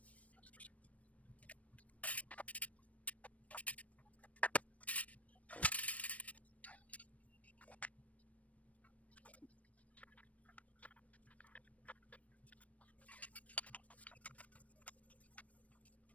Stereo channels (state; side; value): late; right; 0.067 ms